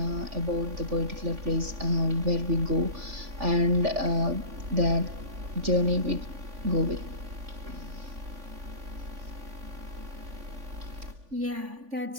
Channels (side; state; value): left; late; 3.5 ms